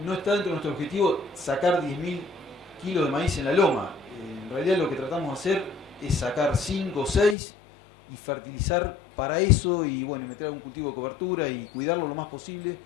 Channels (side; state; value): right; drops out; at 7.4 s